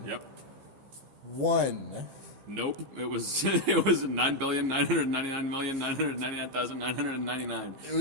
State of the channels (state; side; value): late; left; 15 ms